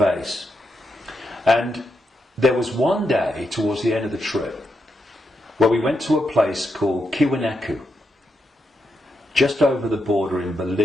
And there was one day towards the end of the trip where we went to a place called Tiwanaku, just over the border in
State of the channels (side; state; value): both; normal; correlation 0.84